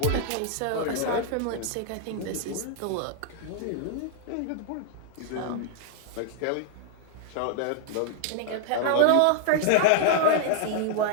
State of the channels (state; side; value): different; both; correlation -0.01